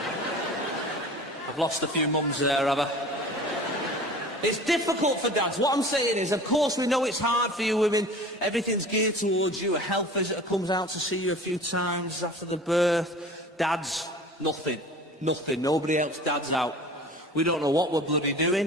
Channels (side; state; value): both; normal; correlation 0.41